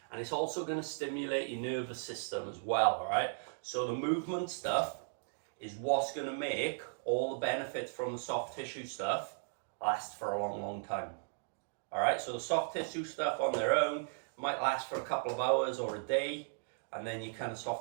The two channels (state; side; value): silent; left; digital silence